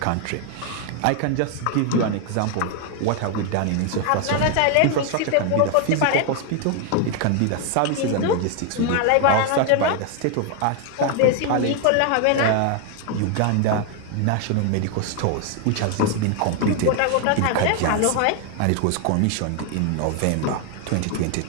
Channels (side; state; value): both; different; correlation 0.00